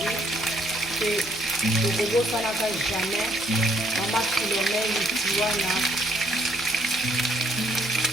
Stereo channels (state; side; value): normal; both; correlation 0.69